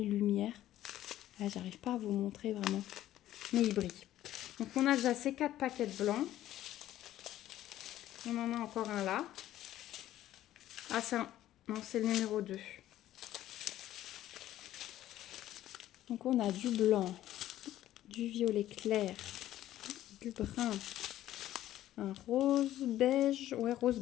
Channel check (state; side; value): quieter; right; 13.4 dB